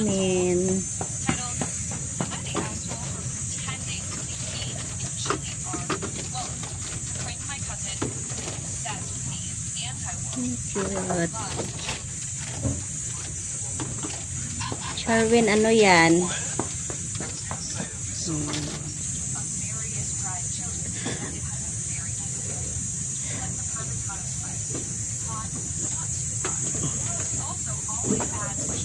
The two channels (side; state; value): both; identical; correlation 1.00